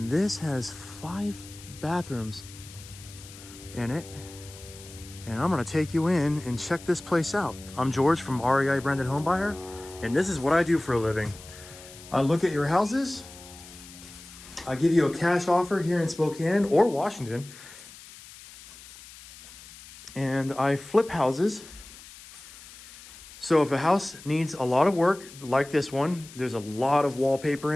this has 5 bathrooms in it. And I'm gonna take you in and check this place out. I'm George from REI Branded Home Buyer, and this is what I do for a living. I look at your houses, I give you a cash offer here in Spokane or Washington, and I flip houses. So if a house needs a lot of work, like this one, there's a lot of wallpaper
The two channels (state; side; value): noise; left; hiss, 18 dB below the sound